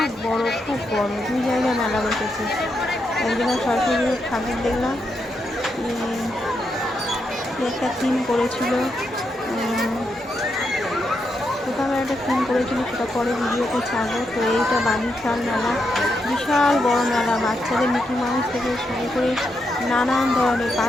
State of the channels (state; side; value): normal; both; correlation 0.82